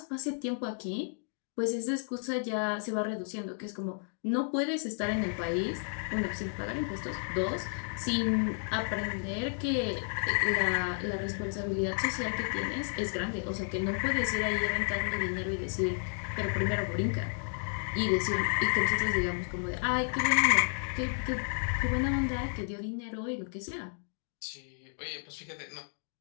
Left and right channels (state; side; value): silent; right; 56 dB below the other